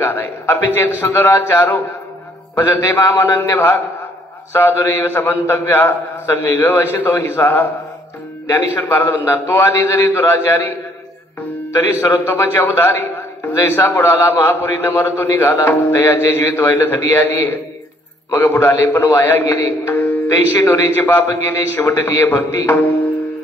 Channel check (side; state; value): both; normal; correlation 0.64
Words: आहे. अपिचेत सुदराचारो भजते माम अनन्य भाग साधुरेव समंतव्या संविग वशितो हिसा. ज्ञानेश्वर महाराज म्हणतात, तो आधी जरी दुराचारी तरी सर्वोत्तमाची अवधारी. जैसा बुडाला महापुरी न मरतो निघाला, तयाचे जीवित व्हायला थडी आली. मग बुडाले पण वाया गेले, तैशी नोरीचे पाप गेले, शेवटलीये भक्ती.